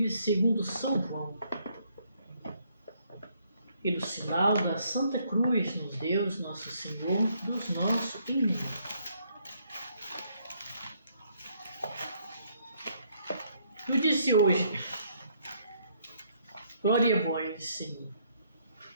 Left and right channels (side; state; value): both; inverted; correlation -0.69